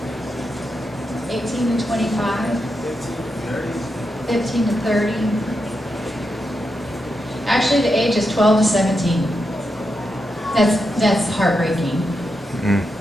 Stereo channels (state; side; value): normal; both; correlation 0.86